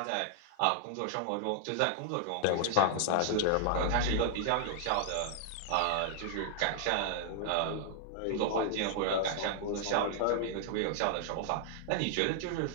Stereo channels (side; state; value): both; different; correlation -0.01